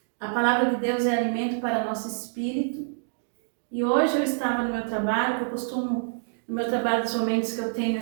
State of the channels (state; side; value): silent; left; digital silence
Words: a palavra de Deus é alimento para nosso espírito. E hoje eu estava no meu trabalho, que eu costumo, no meu trabalho, dos momentos que eu tenho